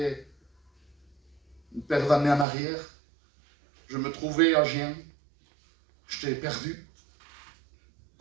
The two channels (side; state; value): left; drops out; at 2.5 s